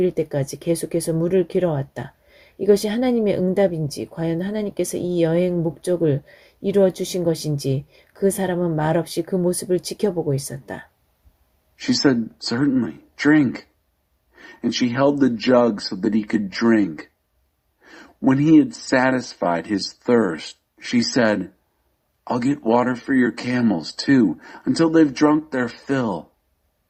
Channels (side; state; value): both; identical; correlation 1.00